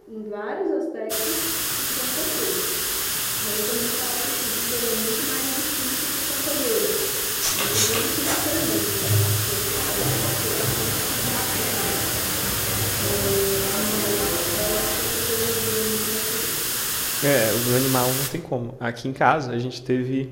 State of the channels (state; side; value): identical; both; correlation 1.00